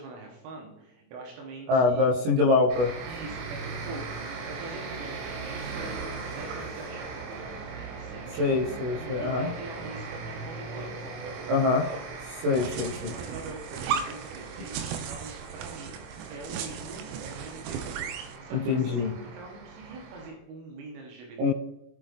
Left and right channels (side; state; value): left; late; 24 ms